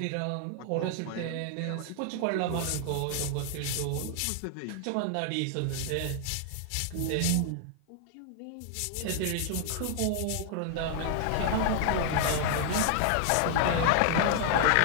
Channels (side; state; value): both; different; correlation 0.00